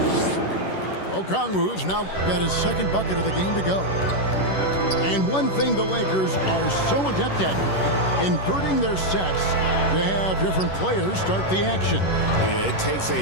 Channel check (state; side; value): late; right; 11 ms